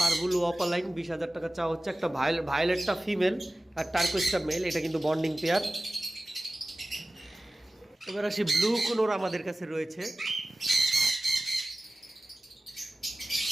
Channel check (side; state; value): both; normal; correlation 0.96